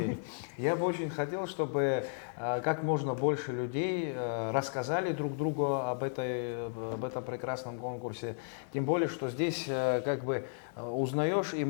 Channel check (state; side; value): silent; right; 55 dB below the other